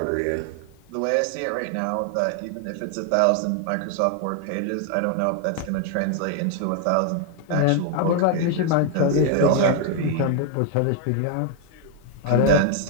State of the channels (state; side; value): different; both; correlation 0.00